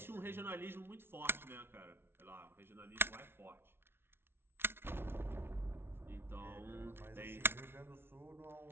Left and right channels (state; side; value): late; left; 0.11 ms